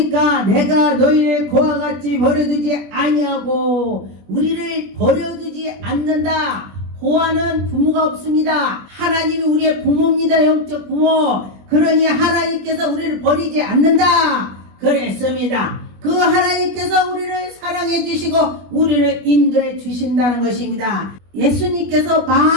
내가 너희를 그와 같이 버려두지 아니하고 우리를 버려두지 않는다. 고아는 부모가 없습니다. 하나님이 우리의 부모입니다. 영적 부모. 그러니 하나님께서 우리를 버리지 않는다 그랬습니다. 그 하나님께서 우리를 사랑해 주시고 우리를 인도해 주신다는 것입니다. 예수님께서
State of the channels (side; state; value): left; late; 21 ms